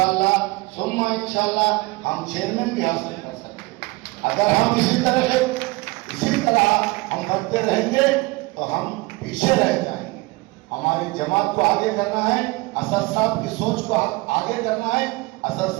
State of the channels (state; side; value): quieter; left; 23.3 dB